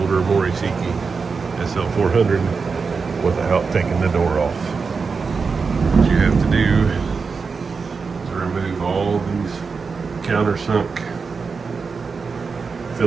Mori Seiki SL-400 without taking the door off. What you have to do is remove all these countersunk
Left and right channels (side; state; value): left; quieter; 5.0 dB